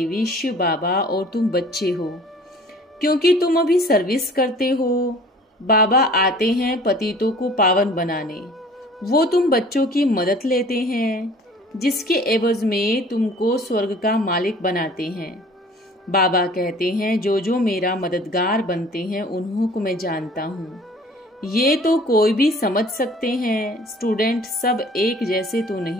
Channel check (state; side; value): normal; both; correlation 0.49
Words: शिव बाबा और तुम बच्चे हो, क्योंकि तुम अभी सर्विस करते हो। बाबा आते हैं पतितों को पावन बनाने, वो तुम बच्चों की मदद लेते हैं, जिसके एवज में तुमको स्वर्ग का मालिक बनाते हैं। बाबा कहते हैं जो जो मेरा मददगार बनते हैं उन्हों को मैं जानता हूँ। ये तो कोई भी समझ सकते हैं, स्टूडेंट सब एक जैसे तो